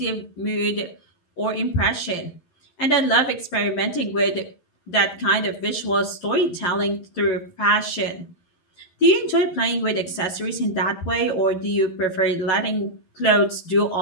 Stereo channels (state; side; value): late; right; 11 ms